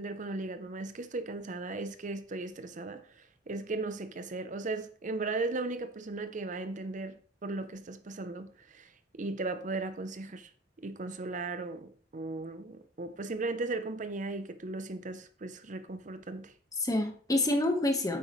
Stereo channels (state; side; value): normal; both; correlation 0.46